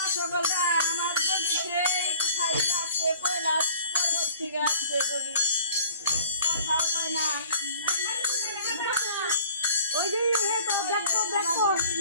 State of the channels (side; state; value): both; inverted; correlation -0.52